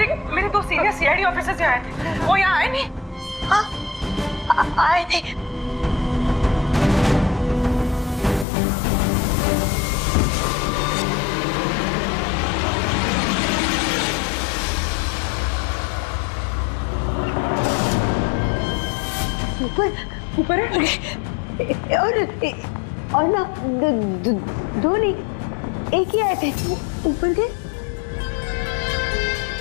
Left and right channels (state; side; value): drops out; right; at 8.5 s